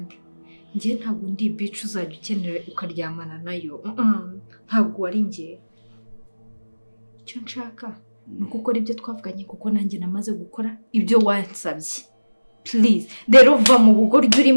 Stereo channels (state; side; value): inverted; both; correlation -1.00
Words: njye ntabwo ndi bitch uzajya ukenera ukaryamana nayo ntabwo wari njye icyo nshaka ni ukukora ibyo twavuganye kuko nanjye namaze gukora ibyo wansabye please rero va mu bugoryi